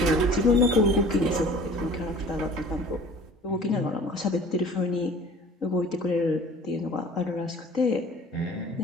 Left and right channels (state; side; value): normal; both; correlation 0.47